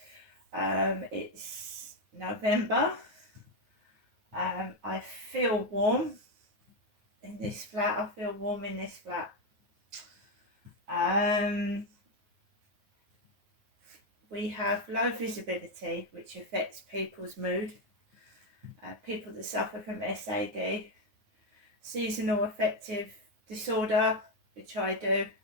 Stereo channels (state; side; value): late; left; 9.4 ms